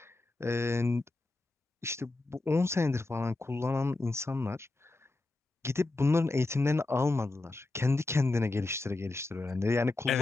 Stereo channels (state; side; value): quieter; right; 3.1 dB